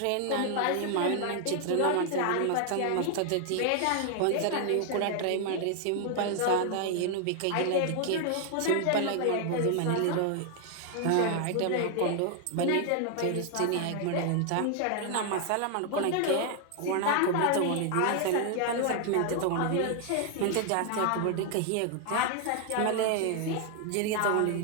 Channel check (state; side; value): different; both; correlation 0.00